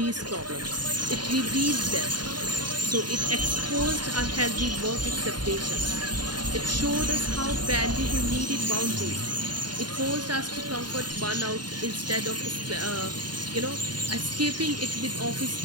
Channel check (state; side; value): late; left; 0.70 ms